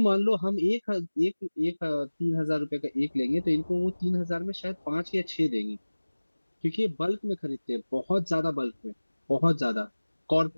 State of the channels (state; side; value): inverted; both; correlation -1.00